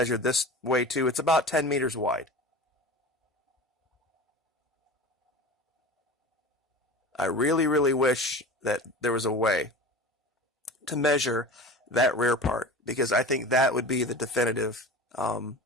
this way too. It's about 10 meters wide. I really, really wish that there was a way to measure that rear part, because I think that would be the definitive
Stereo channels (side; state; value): both; normal; correlation 0.35